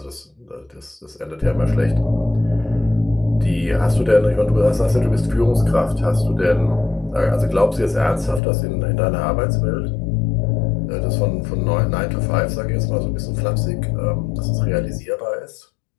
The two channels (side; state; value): right; drops out; at 8.4 s